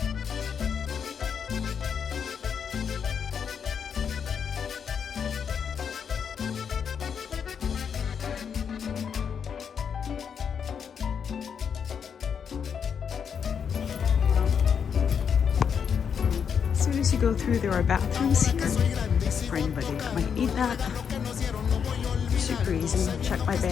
As soon as you go through, there are bathrooms here for anybody that might need that. Super easy. Check my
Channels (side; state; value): right; quieter; 7.1 dB